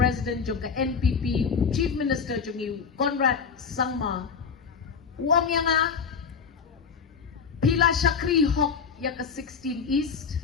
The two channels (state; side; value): quieter; right; 6.0 dB